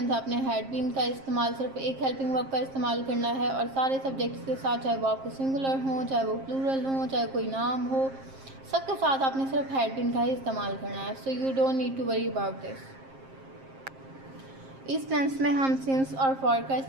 आपने had been का इस्तेमाल सिर्फ एक helping verb का इस्तेमाल करना है और सारे सब्जेक्ट्स के साथ, चाहे वो आपको सिंगुलर हो, चाहे वो प्लूरल हो, चाहे कोई नाम हो, सबके साथ आपने सिर्फ हैड बीन का ही इस्तेमाल करना है. So you don't need to worry about this. इस टेंस में हम सिंस और फॉर का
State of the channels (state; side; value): late; left; 7.5 ms